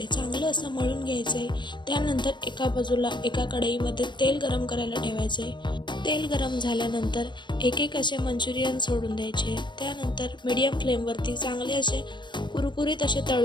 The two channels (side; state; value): right; late; 0.22 ms